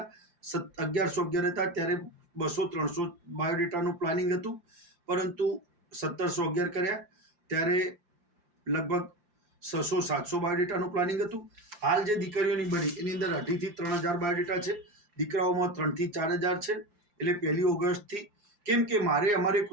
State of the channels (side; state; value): left; late; 5.7 ms